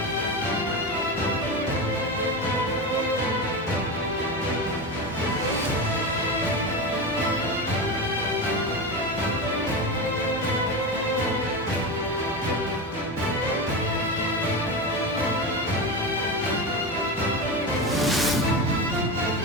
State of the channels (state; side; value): normal; both; correlation 0.20